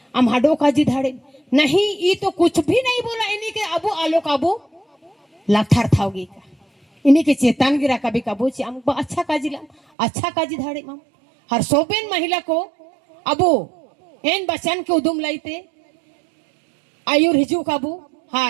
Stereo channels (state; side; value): drops out; left; at 9.8 s